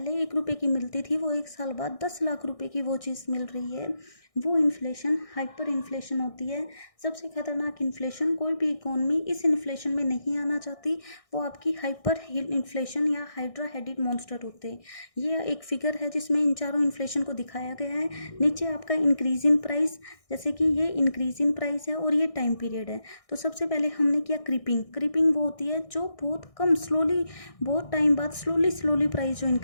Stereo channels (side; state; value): right; late; 1.6 ms